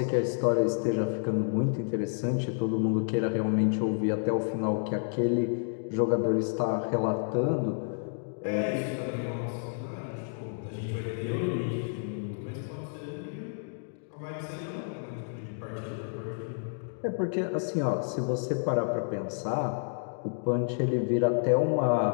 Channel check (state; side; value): silent; right; digital silence